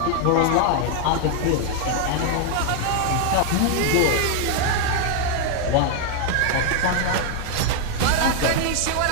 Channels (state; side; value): different; both; correlation 0.00